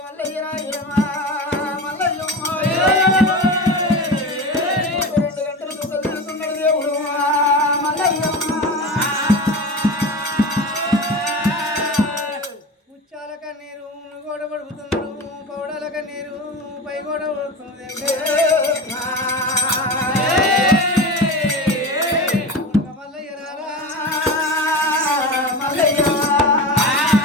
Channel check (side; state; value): both; normal; correlation 0.28